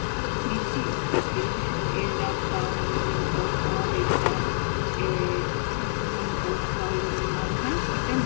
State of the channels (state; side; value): silent; right; digital silence